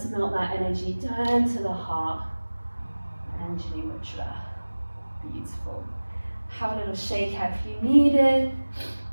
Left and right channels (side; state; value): both; inverted; correlation -1.00